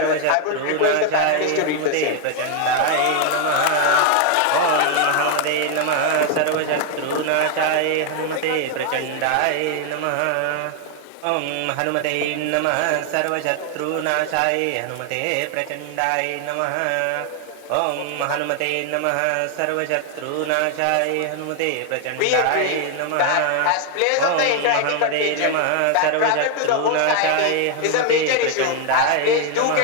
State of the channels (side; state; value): both; different; correlation 0.00